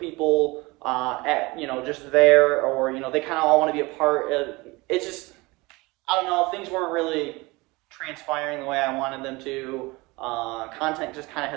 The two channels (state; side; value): quieter; left; 23.4 dB